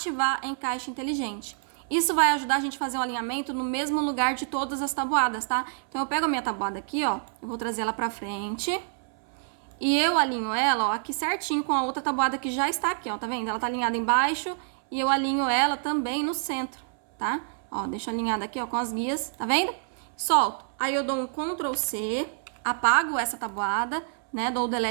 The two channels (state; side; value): silent; left; 60 dB below the other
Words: encaixe inteligente. Isso vai ajudar a gente a fazer um alinhamento no mesmo lugar de todas as tabuadas, tá? Então, eu pego a minha tabuada aqui, ó, eu vou trazer ela pra frente e eu alinho ela, ó, aqui certinho com a outra tabuada que já está aqui, ó, tá vendo? Ela tá alinhada embaixo e eu alinho ela também no centro, tá? Ó, deixo alinhada aqui, ó, com as guias, tá vendo? Solto. Aí eu dou um Ctrl C, apago essa tabuada, né? Dou o